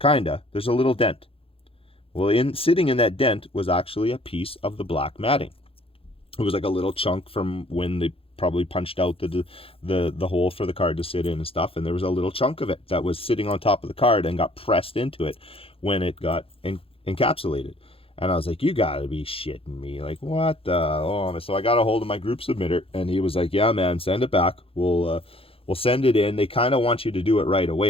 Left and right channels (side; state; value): right; late; 0.27 ms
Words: there's a little dent. Well, sitting in that dent was actually a piece of the black matting. It was like a little chunk from when they probably punched out the hole for the card to sit in and stuff, and there was a little chunk of it that was sitting on top of the card and got pressed into it when it got encapsulated. And I was like, you gotta be shitting me. Like, what the? Oh, so I got a hold of my group submitter, and he was like, yeah, man, send it back. We'll send it in. They kind of want you to do it right